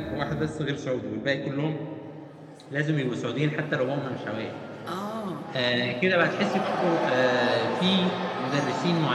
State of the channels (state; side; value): identical; both; correlation 1.00